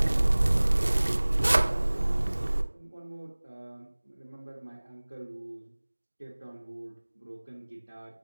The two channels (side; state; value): both; inverted; correlation -1.00